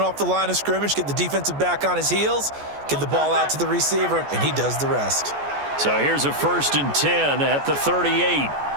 the line of scrimmage, get the defensive back on his heels, get the ball out to the receiver, and he does the rest. So here's a 1st and 10 at the 38.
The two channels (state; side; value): late; left; 14 ms